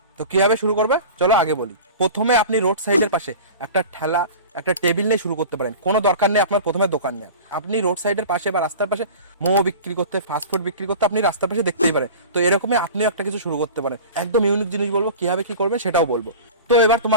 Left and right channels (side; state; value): both; inverted; correlation -0.36